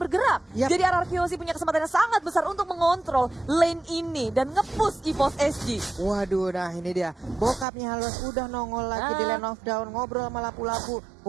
bergerak. Yap. Jadi RRQC punya kesempatan yang sangat besar untuk mengontrol lane ini dan nge-push EVOS SG. Waduh, nah ini dia. Bokapnya Halos udah nongol lagi di Land of Dawn, ngobrol sama lapu-lapu.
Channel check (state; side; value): drops out; left; at 7.7 s